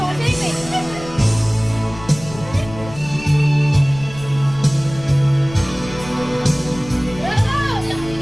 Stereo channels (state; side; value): noise; left; rumble, 15 dB below the sound